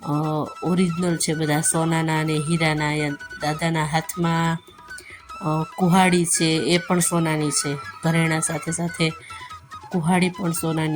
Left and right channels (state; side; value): identical; both; correlation 1.00